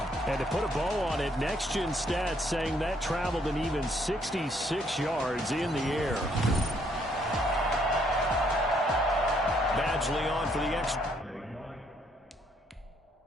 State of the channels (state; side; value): normal; both; correlation 0.69